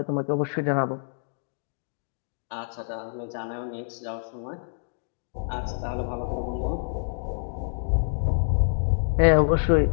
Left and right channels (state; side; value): silent; right; digital silence